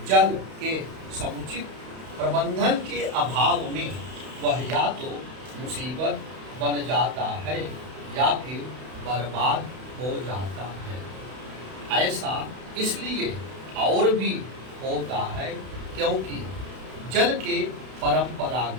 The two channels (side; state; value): left; late; 32 ms